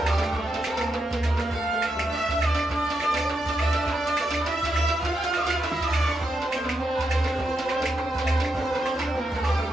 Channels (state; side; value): normal; both; correlation 0.83